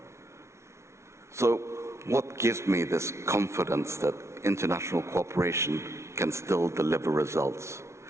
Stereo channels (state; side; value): late; left; 0.13 ms